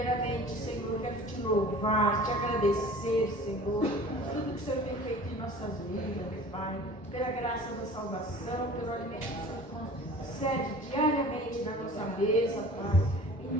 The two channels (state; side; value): normal; both; correlation 0.44